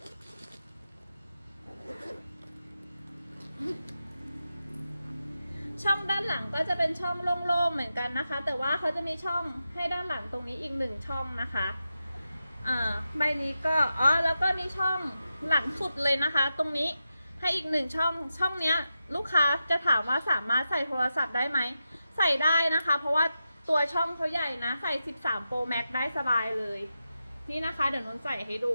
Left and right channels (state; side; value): inverted; both; correlation -0.90